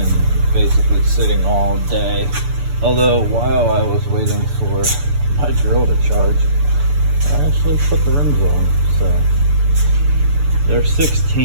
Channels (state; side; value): late; left; 6.9 ms